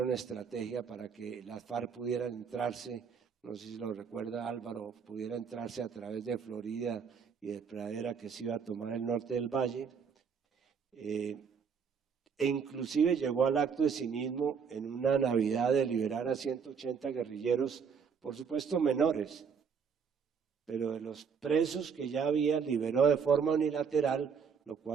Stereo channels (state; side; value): quieter; left; 6.4 dB